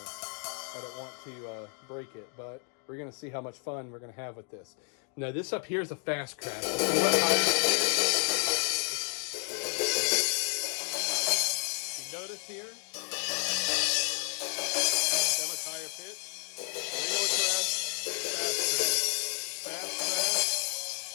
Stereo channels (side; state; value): right; quieter; 38.6 dB